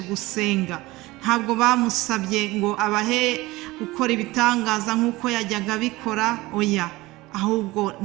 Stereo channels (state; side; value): quieter; left; 20.2 dB